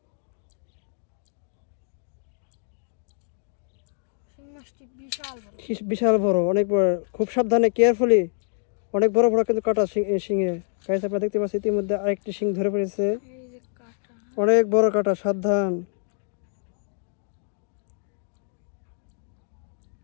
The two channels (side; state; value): right; silent; digital silence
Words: বিশাল বড়, অনেক বড়, খুব সাবধানে কেয়ারফুলি, অনেক বড় কিন্তু কাটা শিঙে। গাছ আপনারা দেখতে পাচ্ছেন ইতিমধ্যে আরেকটি শিং ধরে পড়েছে, অনেক বড় কাটা, সাবধান।